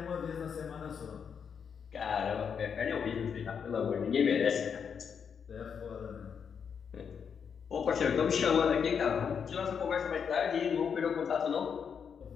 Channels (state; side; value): quieter; right; 6.9 dB